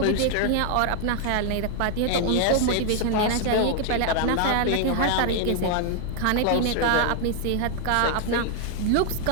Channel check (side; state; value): both; different; correlation 0.00